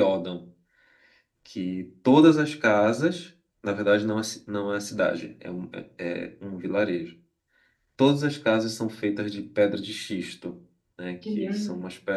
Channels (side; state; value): both; identical; correlation 1.00